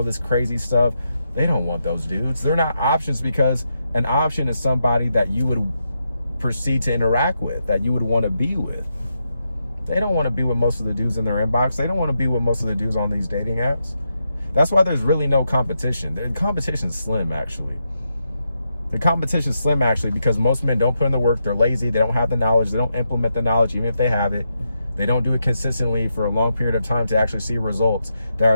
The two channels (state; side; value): inverted; both; correlation -0.84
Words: this crazy stuff, they don't want those dudes. They're not options, because an option is somebody that you would proceed to interact with, that you would want to be with. They don't want to be with most of the dudes in their inbox. They don't want to be with most of the dudes on these dating apps. That's why there's really no competition. The competition's slim, actually. The competition's slim, actually, because most men don't put in the work. They're lazy. They don't have the knowledge. They don't implement the knowledge, even if they have it. They don't do it consistently for a long period of time to actually see results that